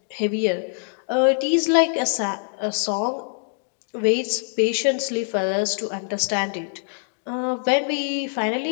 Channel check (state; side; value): silent; right; digital silence